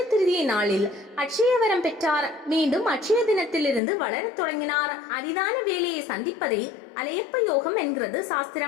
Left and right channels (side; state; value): right; drops out; at 3.8 s